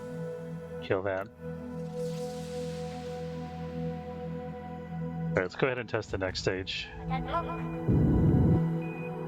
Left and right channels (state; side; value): identical; both; correlation 1.00